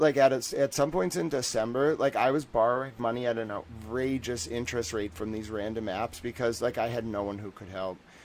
at some points in December, like, I was borrowing money at an outrageous interest rate from these random apps because, like, I had no one who could help.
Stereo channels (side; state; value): both; identical; correlation 1.00